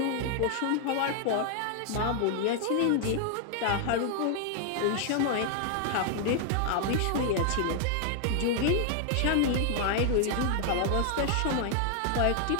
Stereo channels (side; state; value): both; different; correlation 0.00